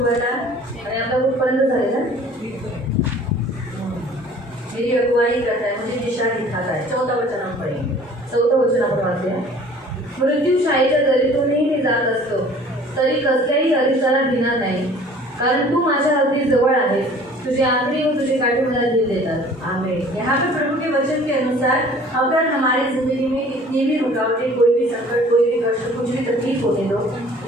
था आणि आपला कुठपर्यंत झालेला. मेरी अगुवाई करता है, मुझे दिशा दिखाता है. 14 वचन हम पढ़ेंगे. 14 वचन आपण वाचूया. मृत्यूशायेच्या दरीतूनही मी जात असतो तरी कसल्याही अरिसाला भिणार नाही, कारण तू माझ्या अगदी जवळ आहे. तुझे आखरी व तुझे काठी मला दिल देतात. आमीन. यहाँ पे प्रभु के वचन के अनुसार अगर हमारी जिंदगी में कितनी भी रुकावटें, कोई भी संकट, कोई भी कष्ट, कुछ भी तकलीफ होने दो,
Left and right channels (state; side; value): normal; both; correlation 0.50